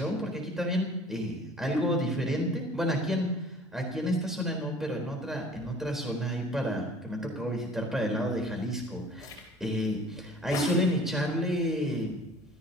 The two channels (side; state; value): both; normal; correlation 0.49